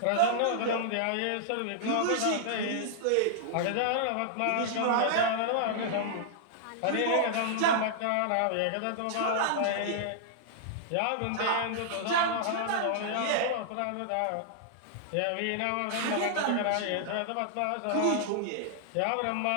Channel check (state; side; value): different; both; correlation -0.01